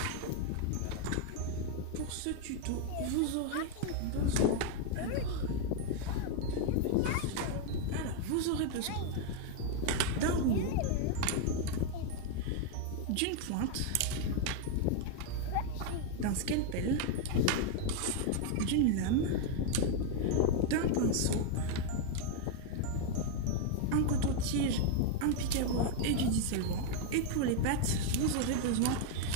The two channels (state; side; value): different; both; correlation 0.00